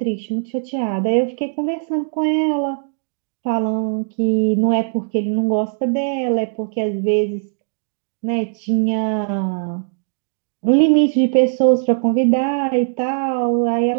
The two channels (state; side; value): silent; left; digital silence